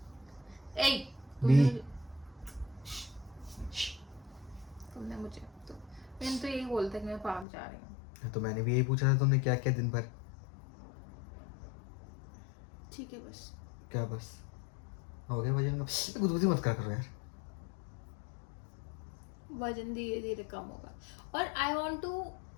ए, बी। तुमने मुझे तो मैंने तो यही बोलता कि मैं पार्क जा रही हूँ। तो मैंने भी यही पूछा था तुमने क्या किया दिन भर। ठीक है बस। क्या बस? हो गया वजन का? गुदगुदी मत करा करो यार। वजन धीरे धीरे कम होगा। और आई वॉन्ट टू,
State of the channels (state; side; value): drops out; right; at 7.5 s